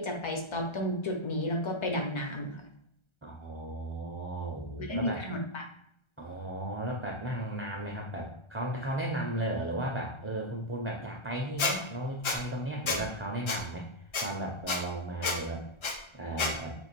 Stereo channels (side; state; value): right; late; 1.3 ms